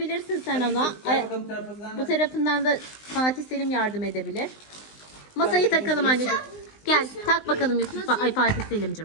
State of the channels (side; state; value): right; late; 19 ms